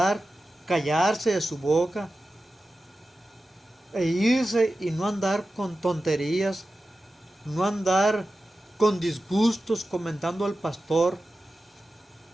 callarse de su boca e irse y no andar con tonterías, no andar con disgustos comentando al pastor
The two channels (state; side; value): normal; both; correlation 0.93